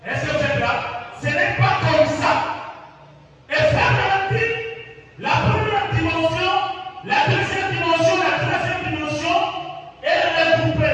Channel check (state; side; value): identical; both; correlation 1.00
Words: Est-ce que vous êtes là? Ce n'est pas comme ça. Et frère Branham dit, la première dimension, la deuxième dimension, la troisième dimension, elle est